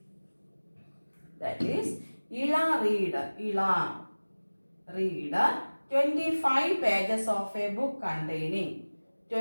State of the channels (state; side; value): inverted; both; correlation -1.00